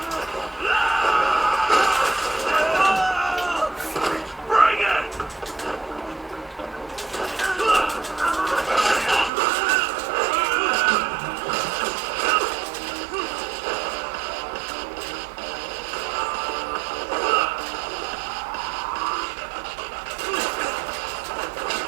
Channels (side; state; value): left; drops out; at 9.3 s